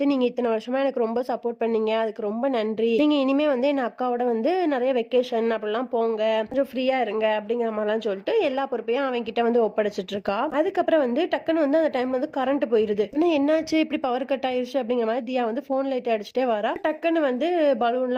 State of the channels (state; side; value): identical; both; correlation 1.00